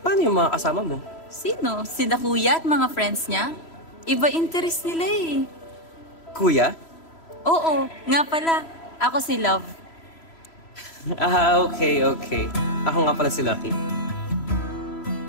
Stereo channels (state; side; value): late; right; 3.0 ms